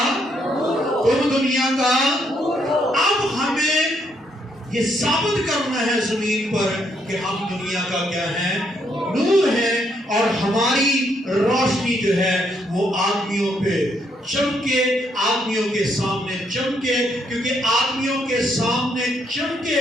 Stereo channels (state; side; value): normal; both; correlation 0.74